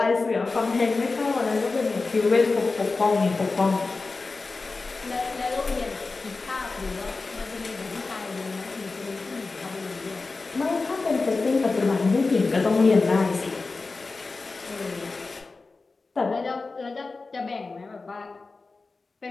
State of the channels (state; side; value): quieter; right; 3.8 dB